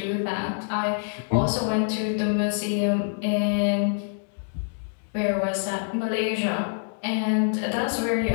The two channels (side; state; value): right; silent; digital silence